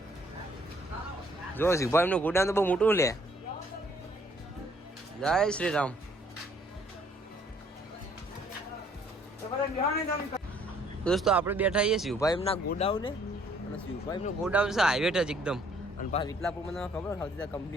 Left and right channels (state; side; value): normal; both; correlation 0.62